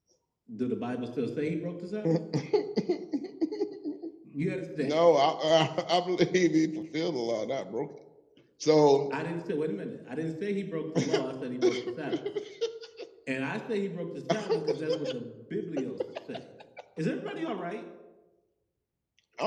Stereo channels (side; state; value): both; identical; correlation 1.00